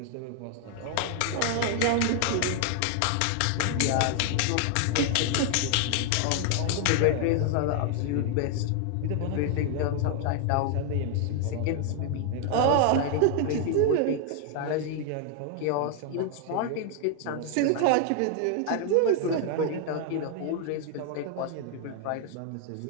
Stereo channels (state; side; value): different; both; correlation 0.00